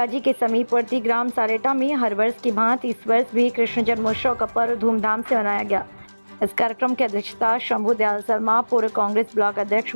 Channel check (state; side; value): inverted; both; correlation -1.00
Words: के समीपवर्ती ग्राम सारेटा में हर वर्ष की भांति इस वर्ष भी कृष्ण जन्मोत्सव का पर्व धूमधाम से मनाया गया। इस कार्यक्रम की अध्यक्षता शंभू दयाल शर्मा, पूर्व कांग्रेस ब्लॉक अध्यक्ष,